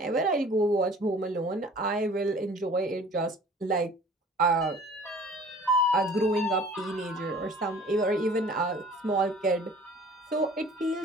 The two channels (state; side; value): normal; both; correlation 0.49